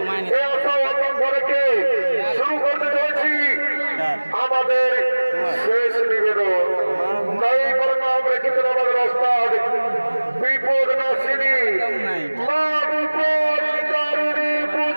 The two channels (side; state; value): both; inverted; correlation -1.00